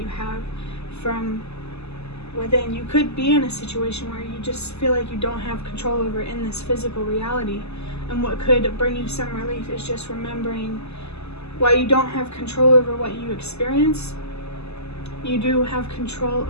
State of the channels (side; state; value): right; late; 0.80 ms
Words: have from within. You could be in a situation where you just feel like you don't have control over in this physical reality, and what could bring you some relief is just remembering, while you don't have control over what you experience, you do have control